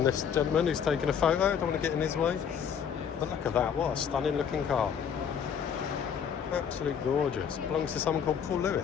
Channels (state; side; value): quieter; right; 7.7 dB